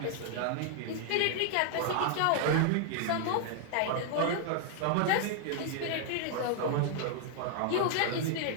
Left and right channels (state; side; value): different; both; correlation 0.00